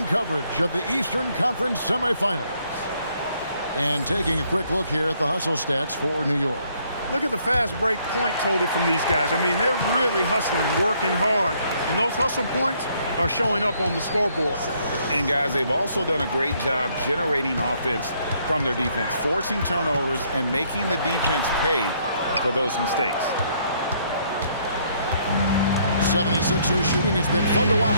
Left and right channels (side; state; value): both; inverted; correlation -0.68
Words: coverage of the Eastern Conference semifinals. And taking a quick look here at the hustle stats for New York. Look at the fast break point total from these guys. I mean, they're really hustling, working hard. And those hustle points are showing up on the scoreboard. And guys, they've also done a great job generating offense from their defense, forcing turnovers and making the defense pay for those mistakes. 76ers shooting has been fun to